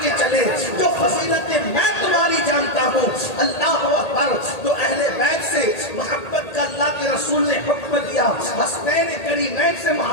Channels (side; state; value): right; late; 1.8 ms